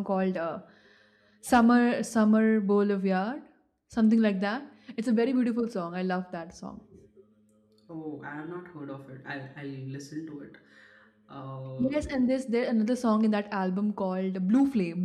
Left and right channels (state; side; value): identical; both; correlation 1.00